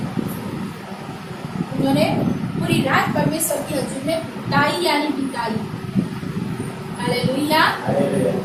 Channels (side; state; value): both; identical; correlation 1.00